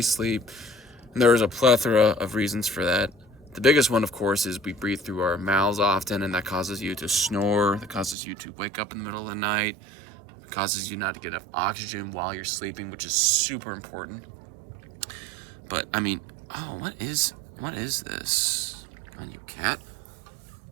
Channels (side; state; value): left; drops out; at 8.2 s